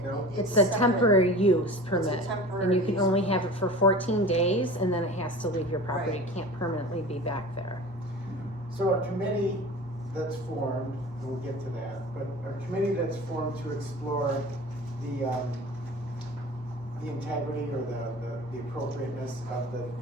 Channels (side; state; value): both; normal; correlation 0.37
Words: No. it's It's a separate. temporary use permit, temporary and you can use only have it for 14 days, and then it has to leave your property. Right. It can't permanently be back there. So a committee that's formed, and we'll get to that, but a committee that's formed to explore the integrity or the appropriateness of